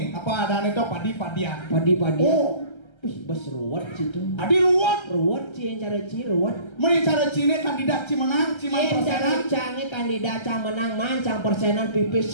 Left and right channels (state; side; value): late; right; 1.3 ms